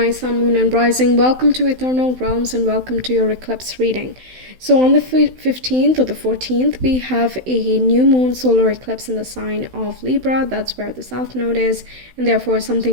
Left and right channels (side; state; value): left; late; 16 ms